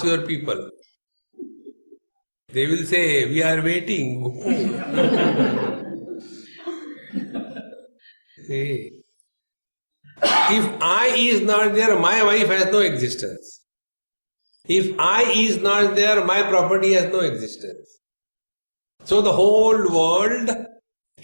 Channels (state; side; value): inverted; both; correlation -1.00